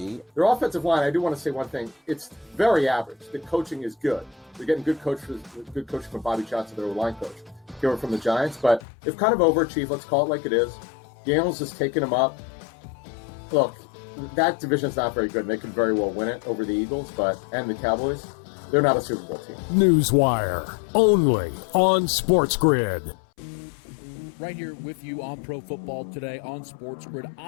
Their offensive line, I do want to say one thing. It's very average. The coaching is good. They're getting good coaching from Bobby Johnson, their line coach. Here from the Giants, but they've kind of overachieved. Let's call it like it is. Daniels has taken them up. Look, that division's not very good. And they could very well win it over the Eagles, and the Cowboys. They're not a Super Bowl team. Newswire, only on SportsGrid. Right here with you on Pro Football Today on SportsGrid.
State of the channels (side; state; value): right; drops out; at 8.8 s